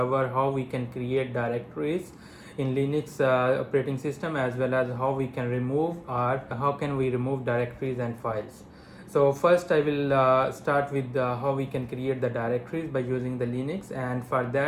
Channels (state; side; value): identical; both; correlation 1.00